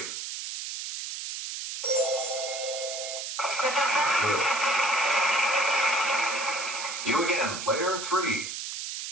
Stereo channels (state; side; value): noise; right; hiss, 6 dB below the sound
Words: Good. You again, Player 3.